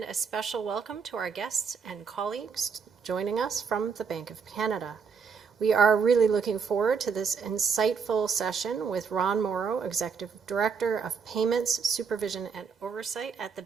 a special welcome to our guests and colleagues joining us from the Banque of Canada. We are really looking forward to this insightful session with Ron Morrow, Executive Director of Payments, Supervision and Oversight at the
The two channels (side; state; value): left; quieter; 5.9 dB